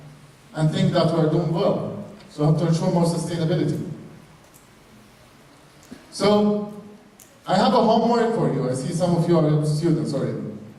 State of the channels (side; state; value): both; identical; correlation 1.00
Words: and think that we're doing well. So we have to ensure more sustainability. So I have a homework for you. I see some of you are students already.